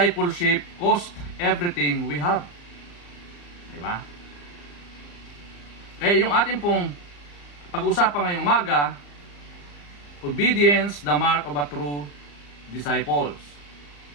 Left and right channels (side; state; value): right; late; 34 ms